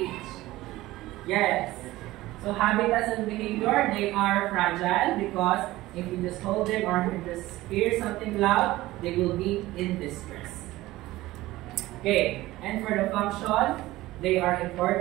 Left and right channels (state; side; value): quieter; left; 17.4 dB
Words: Yes. So habitats and behavior, they are fragile because if you just hold them or you just hear something loud, they will be in distress. Okay, and for the function, they are